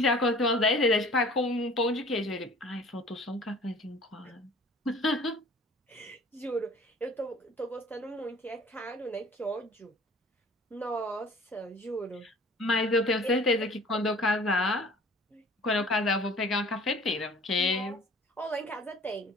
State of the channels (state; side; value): normal; both; correlation 0.49